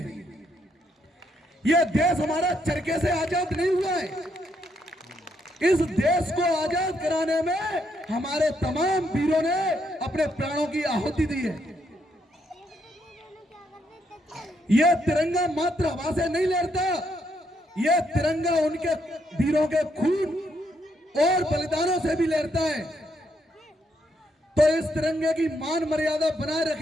यह देश हमारा चरखे से आजाद नहीं हुआ है। इस देश को आजाद कराने में हमारे तमाम वीरों ने अपने प्राणों की आहुति दी है। यह तिरंगा मात्र हवा से नहीं लहरता, यह तिरंगा उनके वीरों के खून और बलिदानों से भी लहरता है। तो इस तिरंगे की मान मर्यादा बनाए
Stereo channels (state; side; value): normal; both; correlation 0.76